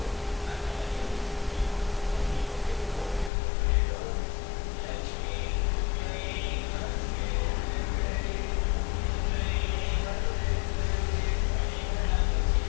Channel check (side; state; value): right; drops out; at 3.3 s